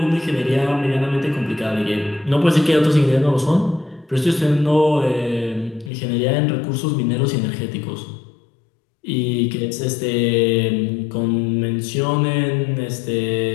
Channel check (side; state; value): right; drops out; at 5.9 s